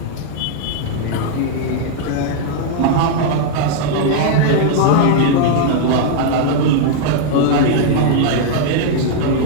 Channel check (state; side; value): different; both; correlation -0.01